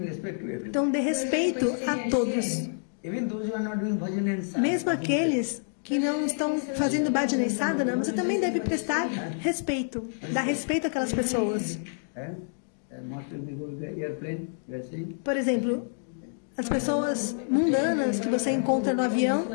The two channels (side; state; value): right; silent; digital silence